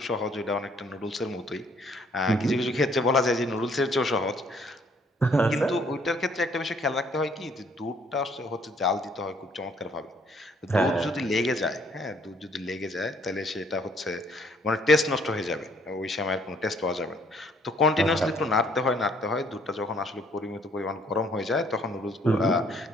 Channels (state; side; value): normal; both; correlation 0.63